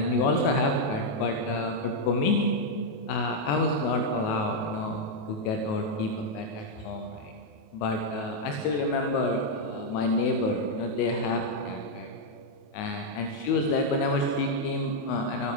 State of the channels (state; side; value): late; right; 28 ms